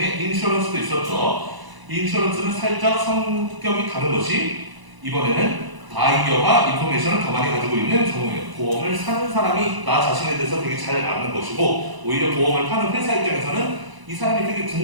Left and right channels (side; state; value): left; late; 1.0 ms